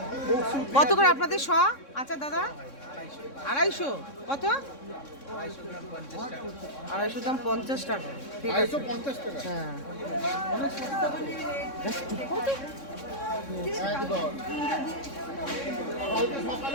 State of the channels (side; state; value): right; late; 3.6 ms